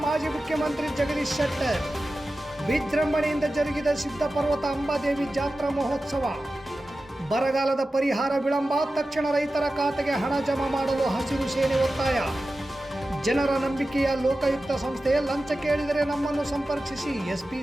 ಮಾಜಿ ಮುಖ್ಯಮಂತ್ರಿ ಜಗದೀಶ್ ಶೆಟ್ಟರ್. ವಿಜೃಂಭಣೆಯಿಂದ ಜರುಗಿದ ಸಿದ್ಧಪರ್ವತ ಅಂಬಾದೇವಿ ಜಾತ್ರಾ ಮಹೋತ್ಸವ. ಬರಗಾಲದ ಪರಿಹಾರ ವಿಳಂಬ, ತಕ್ಷಣ ರೈತರ ಖಾತೆಗೆ ಹಣ ಜಮಾ ಮಾಡಲು ಹಸಿರು ಸೇನೆ ಒತ್ತಾಯ. ಜನರ ನಂಬಿಕೆಯ ಲೋಕಾಯುಕ್ತ ಸಂಸ್ಥೆ, ಲಂಚ ಕೇಳಿದರೆ ನಮ್ಮನ್ನು ಸಂಪರ್ಕಿಸಿ ಎಸ್ಪಿ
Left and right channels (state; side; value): normal; both; correlation 0.94